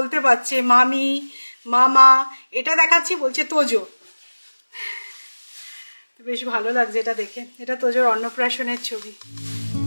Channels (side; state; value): both; inverted; correlation -1.00